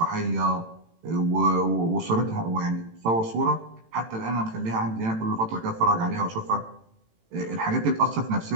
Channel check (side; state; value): left; late; 18 ms